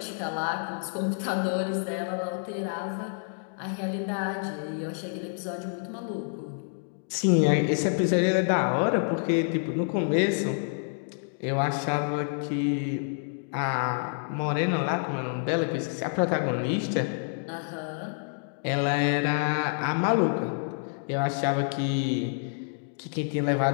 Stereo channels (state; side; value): silent; right; digital silence